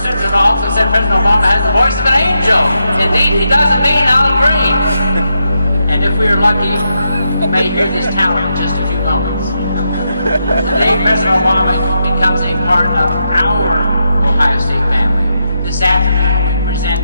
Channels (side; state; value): both; inverted; correlation -0.84